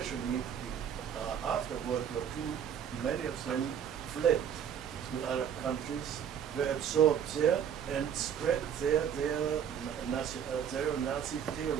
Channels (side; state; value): left; quieter; 8.5 dB